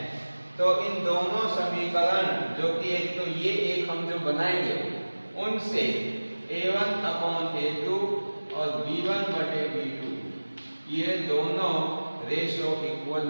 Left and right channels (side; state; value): both; inverted; correlation -1.00